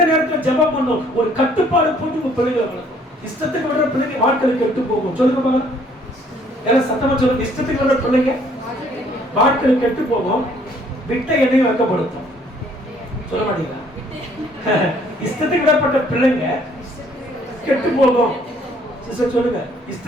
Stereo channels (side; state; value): both; normal; correlation 0.62